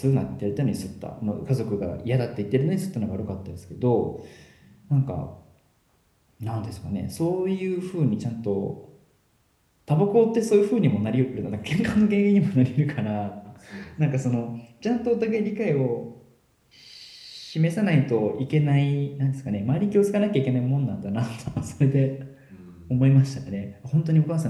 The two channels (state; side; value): identical; both; correlation 1.00